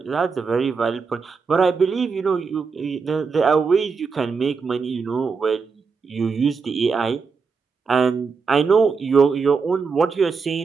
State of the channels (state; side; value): quieter; left; 5.1 dB